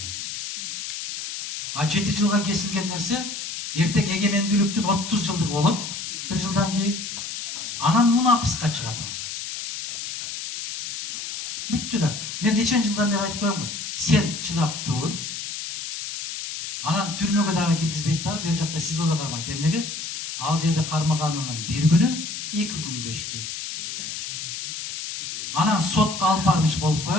А 7 жылга кесилген нерсе эртең эгемендүүлүктүн 30 жылдыгы болот. 1 жылдан кийин анан мунапыска чыгат ал. Бүттү да. Мен нечен жылдан бери айтып коем го. Сен чыдап тур. Анан түрмөгө дагы киргизбейт дагы, бер жакта СИЗОдо кармайт. Эмнеге? Ал жерде кармаганынын 1 күнү 2 күнгө иштейт. Анан сотко алып бармыш болуп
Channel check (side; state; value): left; noise; hiss, 6 dB below the sound